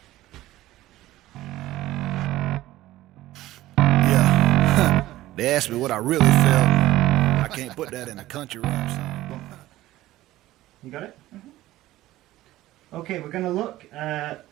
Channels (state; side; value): quieter; left; 15.9 dB